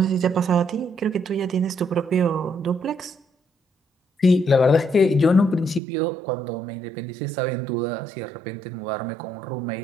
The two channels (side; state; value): left; drops out; at 5.8 s